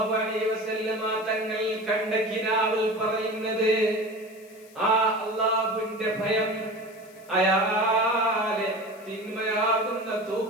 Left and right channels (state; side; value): noise; left; hiss, 26 dB below the sound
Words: അലൈഹി വസല്ലമ തങ്ങൾ കണ്ട കിനാവിൽ പറയുന്നത് ആ അല്ലാഹുവിന്റെ ഭയം അയാളെ തിന്മയാകുന്ന